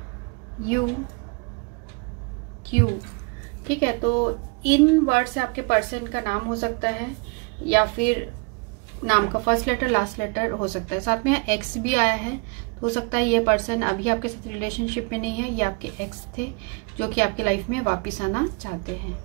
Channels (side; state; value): left; quieter; 31.2 dB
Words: U Q. ठीक है, तो इन वर्ड से आपके पर्सन का नाम हो सकता है या फिर नाम का फर्स्ट लेटर लास्ट लेटर हो सकता है। साथ में एक्स भी आया है, तो हो सकता है ये पर्सन अभी आपके साथ रिलेशनशिप में नहीं है, ये आपके एक्स थे जो कि आपके लाइफ में वापस आना चाहते हैं,